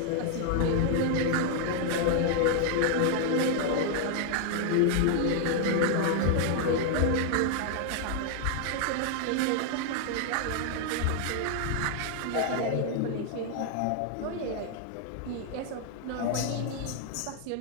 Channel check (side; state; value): both; different; correlation 0.00